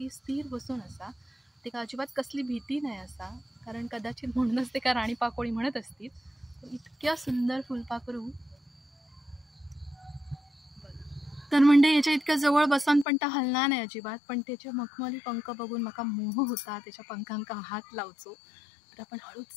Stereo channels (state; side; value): drops out; right; at 13.1 s